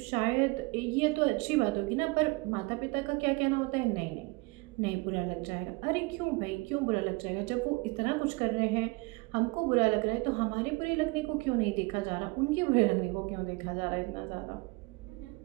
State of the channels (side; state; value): left; quieter; 26.4 dB